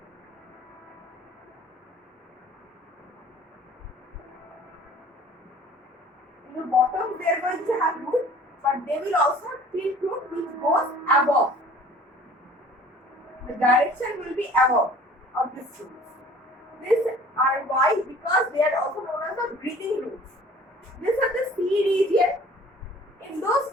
in the bottom they are going to have root, but they will also have thin root which goes above. The direction will be above of these roots. These are why, because they are also known as the breathing roots. These are the sea region. In those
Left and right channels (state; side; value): normal; both; correlation 0.49